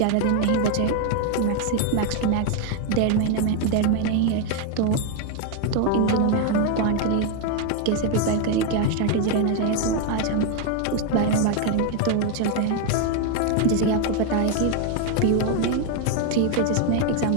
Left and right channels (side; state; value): both; different; correlation 0.01